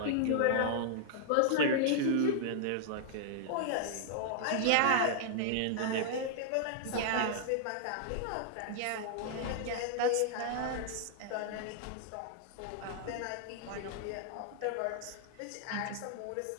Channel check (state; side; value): different; both; correlation -0.01